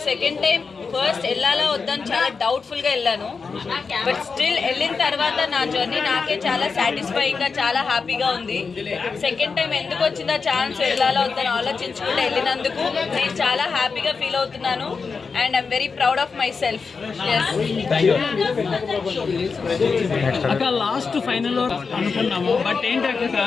సెకండ్ టైం. ఫస్ట్ వెళ్ళాలా వద్దని చాలా డౌట్ఫుల్గా వెళ్ళాను, బట్ స్టిల్ వెళ్ళిన తర్వాత నా జర్నీ నాకే చాలా సాటిస్ఫైయింగ్గా చాలా హ్యాపీగా ఉంది. సెకండ్ టైం ఎందుకు వచ్చిందా ఛాన్స్ వెళ్ళాలా వద్దని ఆలోచించుకుంటూ వెళ్ళినందుకు నేను చాలా హ్యాపీగా ఫీల్ అవుతున్నాను and I'm very proud of my self. అక్క లాస్ట్ ఫైనల్ అనుకున్నాము, బట్ ఏంటి అక్క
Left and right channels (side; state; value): right; quieter; 5.0 dB